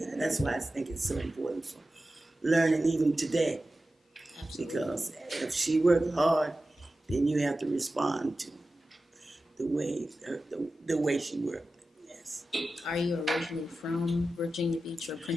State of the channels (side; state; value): both; normal; correlation 0.94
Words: that's why I think it's so important for learning even today. Absolutely. Because if she worked hard, then you have to respond to the way she worked. Yes. Are you originally from Virginia Beach or